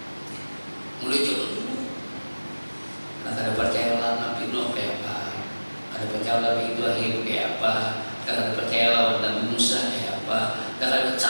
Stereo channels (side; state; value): both; inverted; correlation -1.00